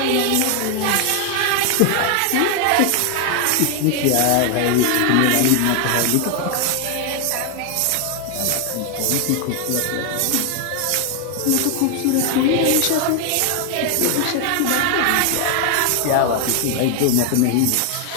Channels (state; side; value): different; both; correlation 0.00